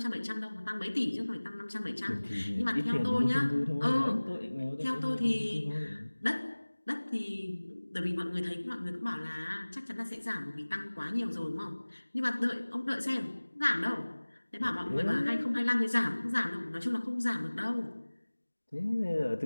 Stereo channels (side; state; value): both; inverted; correlation -1.00